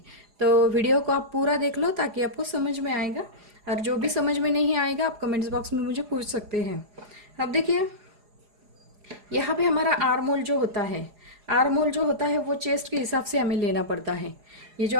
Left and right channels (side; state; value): left; late; 4.8 ms